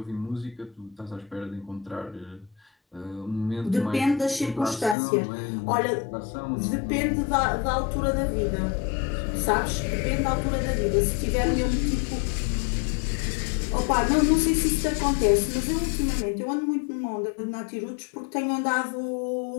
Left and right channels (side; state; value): right; drops out; at 5.0 s